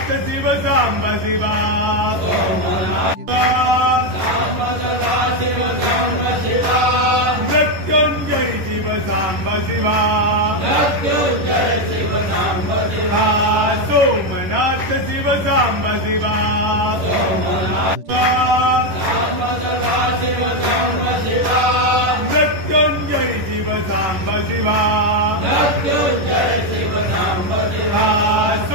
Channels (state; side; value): late; left; 11 ms